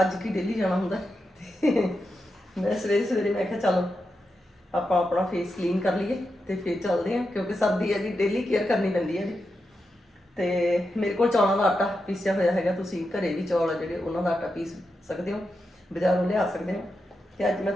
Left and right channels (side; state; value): both; normal; correlation 0.87